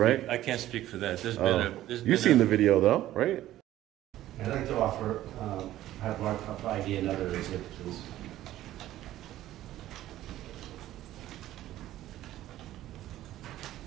I can't speak for that. There's been Oh. there's You've been seen the video though, right? I'd like to offer, have one idea, another exhibit, please.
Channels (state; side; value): quieter; left; 14.0 dB